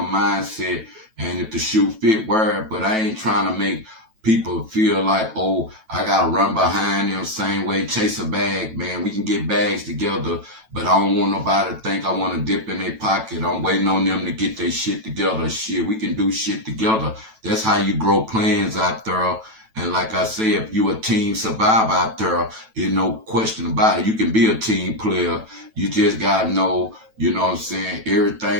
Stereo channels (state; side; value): late; left; 9.1 ms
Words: And if the shoe fit, wear it. But I ain't trying to make people feel like, oh, I got to run behind them same way, chase a bag, man. We can get bags together, but I don't want nobody to think I want to dip in their pocket. I'm waiting on them to get their shit together. Shit, we can do shit together. That's how you grow plans out there. And like I say, if you a team survivor out there, there's no question about it. You can be a team player. You just got to know, you know what I'm saying,